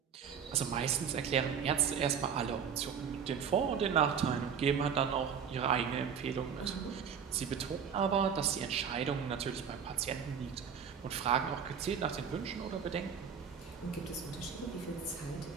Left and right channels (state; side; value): quieter; left; 7.2 dB